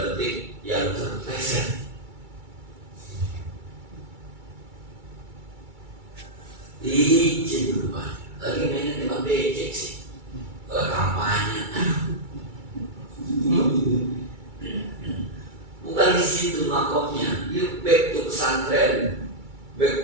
petik yang terpleset. Licin berubah. Lagi mainnya tembak becek sih. Kalau kampanye. Bukan di situ makomnya. You back to pesantren,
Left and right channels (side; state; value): left; late; 2.3 ms